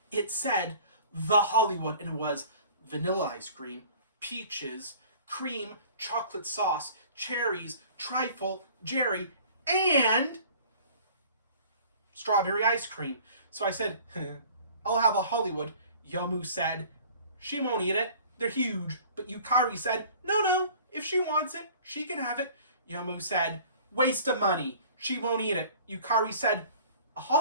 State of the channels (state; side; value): inverted; both; correlation -0.48